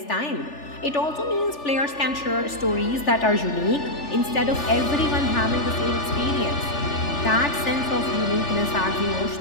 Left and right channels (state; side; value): late; right; 3.4 ms